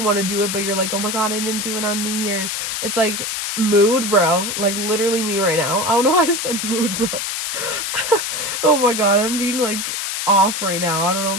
to do it, but you're like, oh my God, I didn't do it on New Year's. It's like, mood, bro. Like, literally me right now. I don't know why I said mood, bro. Oh my God, I'm being like off right now. I don't know,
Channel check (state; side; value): noise; left; hiss, 3 dB below the sound